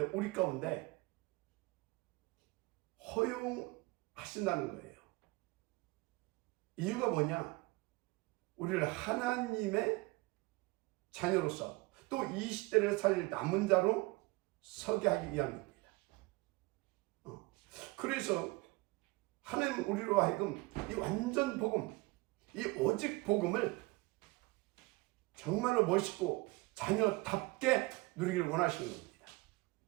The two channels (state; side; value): quieter; left; 23.8 dB